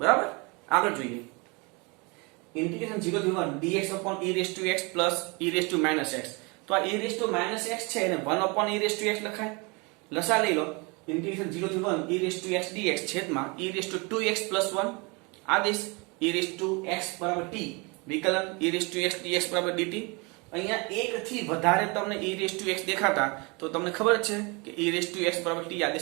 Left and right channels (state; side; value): quieter; left; 29.0 dB